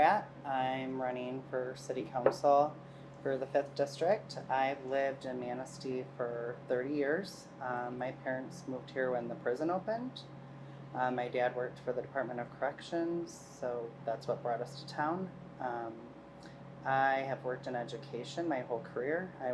I'm running for City Council for the 5th District. I've lived in Manistee for 30 years. My parents moved here when the prison opened. My dad worked for the Department of Corrections, so that's what brought us to town. I have worked in education my whole career. I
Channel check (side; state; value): both; identical; correlation 1.00